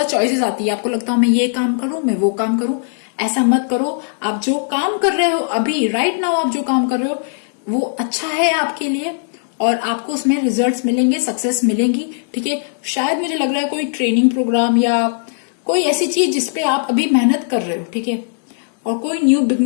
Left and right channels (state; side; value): silent; right; digital silence